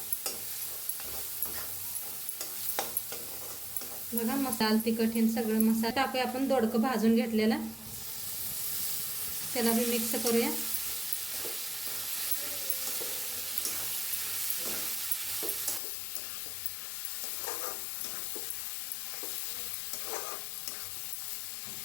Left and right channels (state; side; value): drops out; right; at 15.8 s